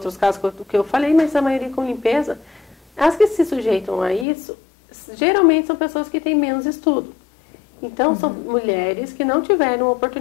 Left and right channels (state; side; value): drops out; right; at 4.2 s